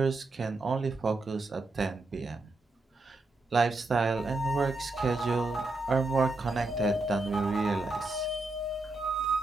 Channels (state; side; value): quieter; left; 3.1 dB